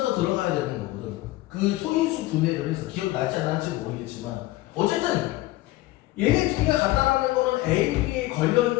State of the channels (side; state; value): right; quieter; 17.9 dB